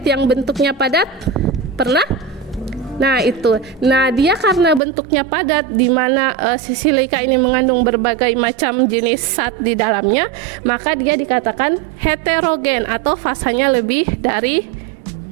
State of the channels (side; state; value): left; drops out; at 4.8 s